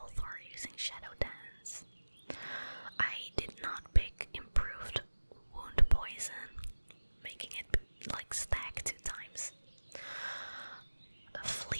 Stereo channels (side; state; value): both; inverted; correlation -1.00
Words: or using Shadow Dance. I did not pick Improved Wound Poison, making it like stack 2 times.